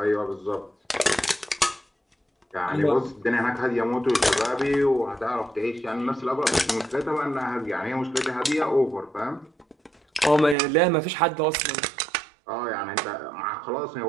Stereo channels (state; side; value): drops out; left; at 10.6 s